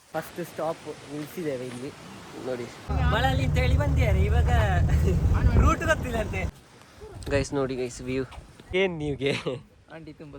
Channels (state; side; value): identical; both; correlation 1.00